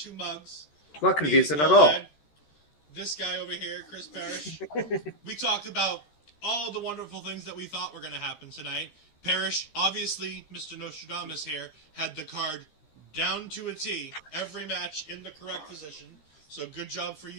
mugs. Not Me, confusing at all. this guy over here, Chris Parrish. We talked about all the wonderful things that we thought were going to happen tonight. Parrish, obviously, Mr. Nostradamus here, had the card down to a T, every match in the correct position. So good job for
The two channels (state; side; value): late; right; 13 ms